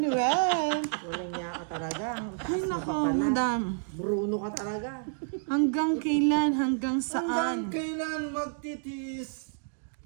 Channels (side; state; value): left; silent; digital silence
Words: Walang niya ka talaga. Ang Ay, taas mo nako, pa pala. Madam. Bruno ka talaga. Hanggang kailan? Hanggang saan? Hanggang kailan magtitis?